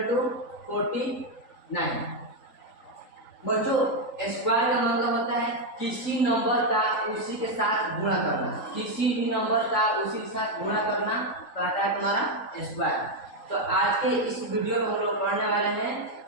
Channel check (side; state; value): right; late; 3.9 ms